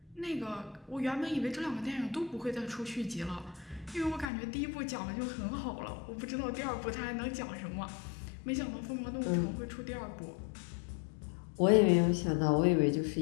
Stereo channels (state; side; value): drops out; right; at 4.2 s